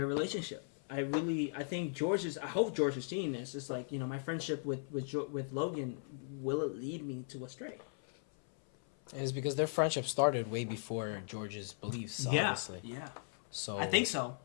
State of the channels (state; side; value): silent; right; 53 dB below the other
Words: relationship. I think I hope George is seeing this. It's like, my friendship with Logan, will it lead me to astray? It's because their friendship started way before George's beliefs, obviously. Yeah. So I think so.